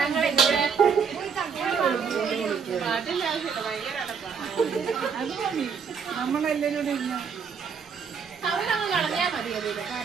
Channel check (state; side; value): quieter; left; 6.2 dB